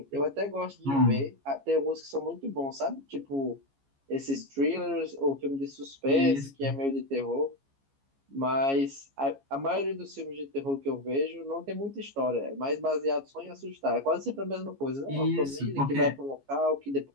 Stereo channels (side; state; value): left; late; 15 ms